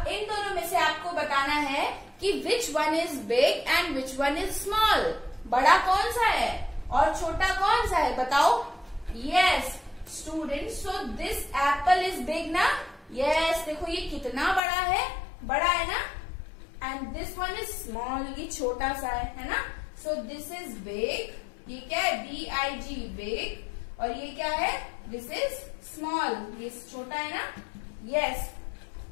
इन दोनों में से आपको बताना है कि which one is big and which one is small. बड़ा कौन सा है और छोटा कौन सा है? बताओ. Yes students, so this Apple is big ना? यस, देखो ये कितना बड़ा है, बड़ा है ना? And this one is small, ये छोटा सा है ना? सो दिस इज बिग. ये क्या है? BIG, big. और ये क्या है? दिस इज स्मॉल, ये छोटा है ना? यस.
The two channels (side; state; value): right; drops out; at 14.6 s